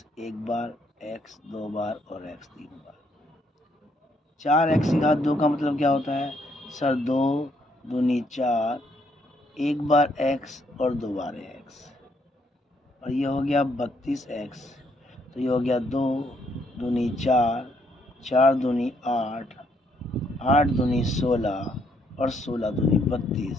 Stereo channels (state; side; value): normal; both; correlation 0.72